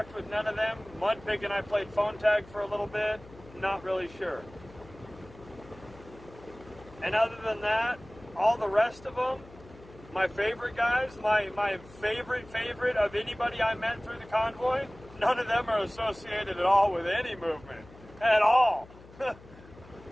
with none of them. Mudpig and I played phone tag for a little bit. Not really sure. And other than that, all the rest of them, my favorite guys, my favorite of anybody I met through the convoy, none of them are associated at all with any movement. At all.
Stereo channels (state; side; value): noise; left; hum, 21 dB below the sound